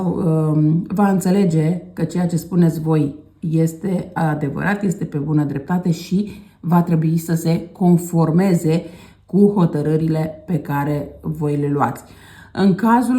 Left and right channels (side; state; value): both; identical; correlation 1.00